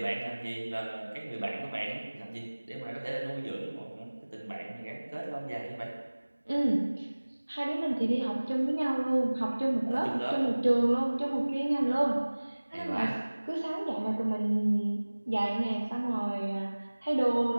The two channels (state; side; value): inverted; both; correlation -1.00